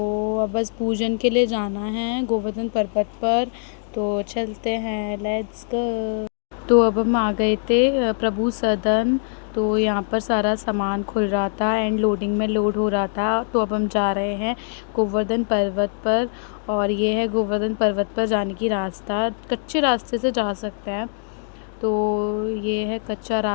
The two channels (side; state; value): right; silent; digital silence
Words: अब बस पूजन के लिए जाना है गोवर्धन पर्वत पर। तो चलते हैं, लेट्स गो। तो अब हम आ गए थे प्रभु सदन। तो यहाँ पर सारा सामान खुल रहा था एंड लोडिंग में लोड हो रहा था। तो अब हम जा रहे हैं गोवर्धन पर्वत पर। और ये है गोवर्धन पर्वत पर जाने की रास्ता। कच्चे रास्ते से जा सकते हैं। तो ये है कच्चा